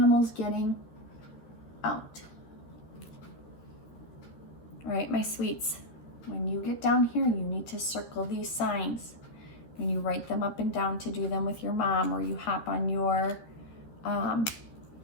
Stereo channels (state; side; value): late; right; 13 ms